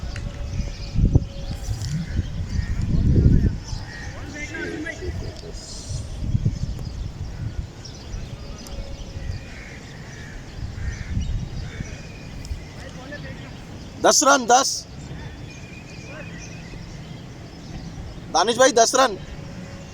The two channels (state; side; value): identical; both; correlation 1.00